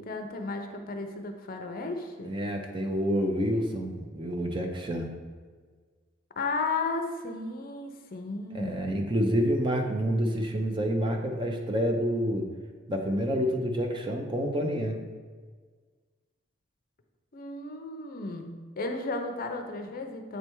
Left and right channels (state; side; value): normal; both; correlation 0.60